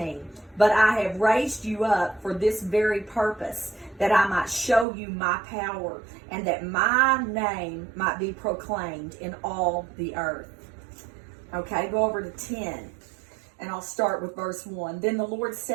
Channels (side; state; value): left; drops out; at 4.9 s